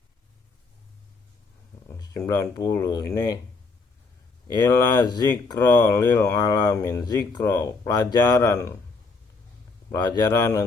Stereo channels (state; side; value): quieter; right; 3.9 dB